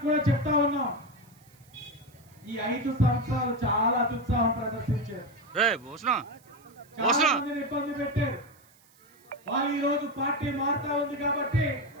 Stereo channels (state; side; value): noise; right; hiss, 29 dB below the sound